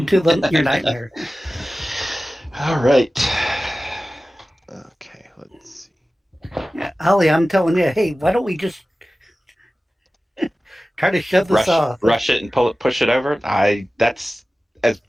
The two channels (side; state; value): both; normal; correlation 0.96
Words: to your nightmare. All right. Okay, let's see. Yeah, Ollie, I'm telling you, hey, why don't we just try to shove this off? Rush it and push it over. That's as